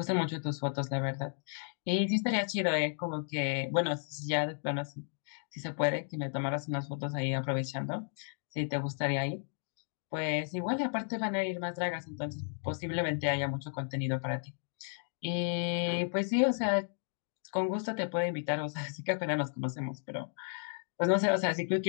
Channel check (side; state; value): right; silent; digital silence